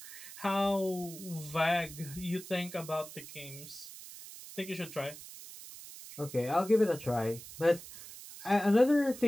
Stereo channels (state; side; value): noise; right; hiss, 14 dB below the sound